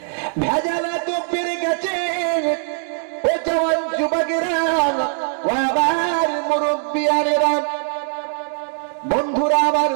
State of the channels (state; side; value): silent; left; 65 dB below the other